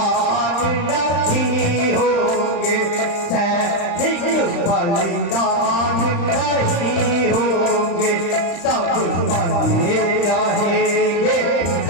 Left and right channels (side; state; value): right; late; 35 ms